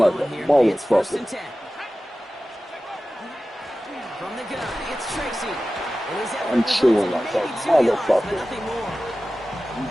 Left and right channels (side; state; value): both; normal; correlation 0.95